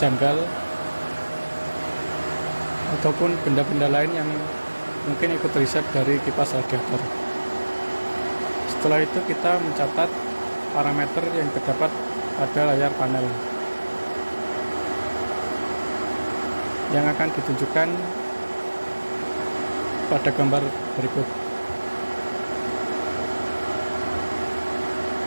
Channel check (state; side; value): inverted; both; correlation -1.00